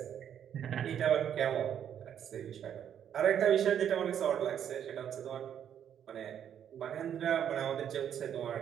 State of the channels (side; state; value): left; quieter; 9.2 dB